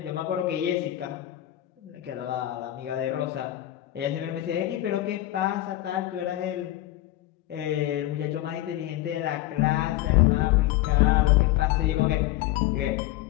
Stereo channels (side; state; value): right; quieter; 15.1 dB